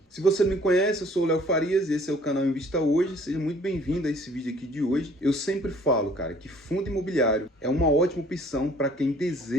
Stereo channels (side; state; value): both; normal; correlation 0.56